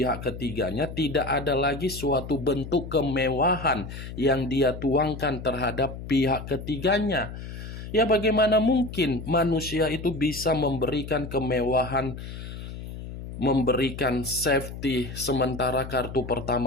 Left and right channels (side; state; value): left; noise; hum, 10 dB below the sound